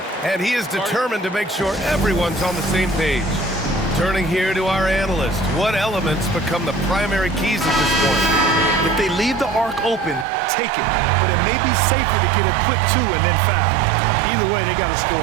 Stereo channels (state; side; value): drops out; left; at 10.2 s